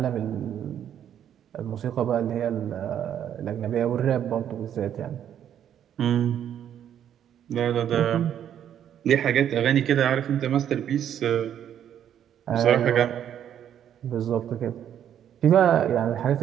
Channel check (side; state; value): left; quieter; 9.8 dB